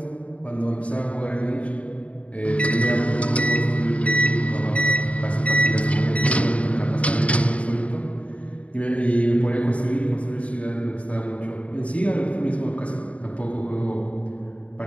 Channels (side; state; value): right; late; 0.065 ms